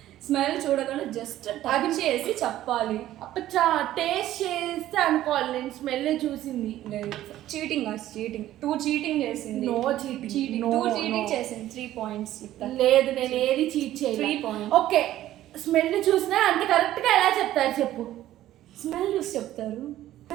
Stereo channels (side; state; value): left; quieter; 13.7 dB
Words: స్మెల్ చూడకుండా జస్ట్ టచ్ చేసి చెప్పాలి. అప్పచ్చా టేస్ట్ చేస్తే అనుకోవాలి. నేను స్మెల్ చూసింది. చీటింగ్ కాదు, చీటింగ్. 2 చీటింగ్ చేసింది. No cheating. Cheating. No, 2 cheating no. చేసింది. 3 పాయింట్స్. లేదు, నేను ఏది చీట్ 3 చేయలేదు. points. ఓకే, స్మెల్ చూసినా అంత కరెక్ట్గా ఎలా చెప్తారు చెప్పు? స్మెల్ చూసి చెప్తారు.